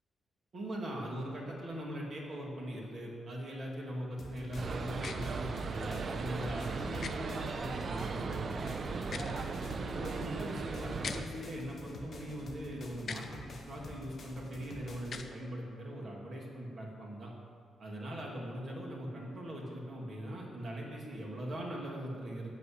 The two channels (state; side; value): normal; both; correlation 0.82